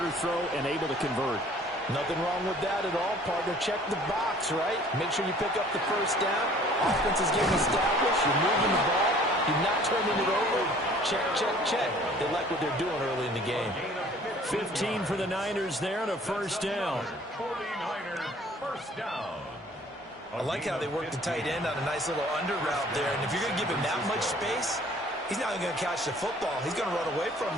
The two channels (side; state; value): both; normal; correlation 0.53